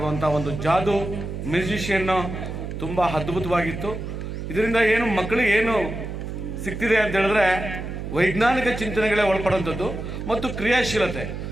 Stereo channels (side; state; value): right; noise; hum, 6 dB below the sound